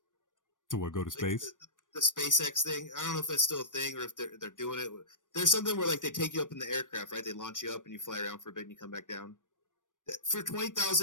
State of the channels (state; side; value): late; right; 0.87 ms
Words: To what, go to space? Like the SpaceX thing. I don't know if that's still a thing or if they're doing it. There's something where like they take you up in the aircraft, right? They launch you up and you fly around for a bit and you come back down. For